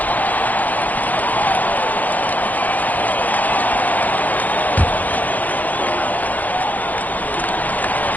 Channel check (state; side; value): late; right; 0.081 ms